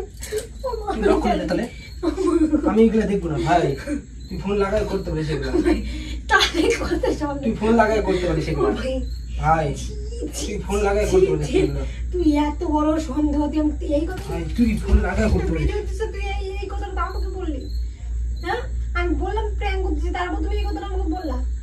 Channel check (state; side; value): identical; both; correlation 1.00